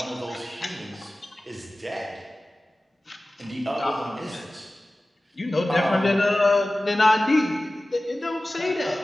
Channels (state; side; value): normal; both; correlation 0.97